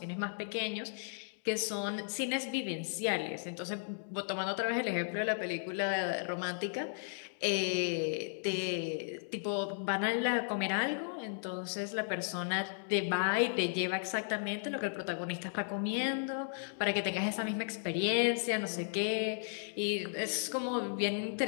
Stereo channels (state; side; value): silent; right; digital silence